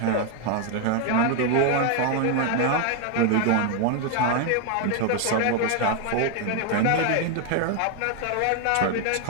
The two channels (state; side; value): different; both; correlation 0.00